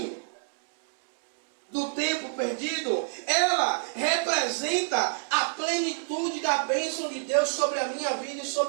do tempo perdido. Ela representa a plenitude da bênção de Deus sobre a minha vida e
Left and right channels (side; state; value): left; silent; digital silence